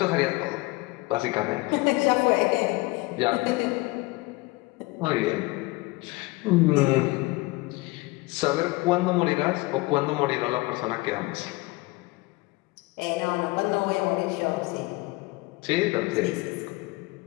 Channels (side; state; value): right; quieter; 22.8 dB